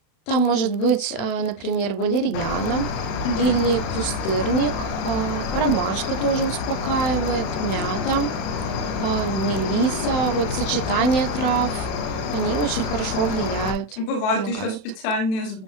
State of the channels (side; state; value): right; late; 32 ms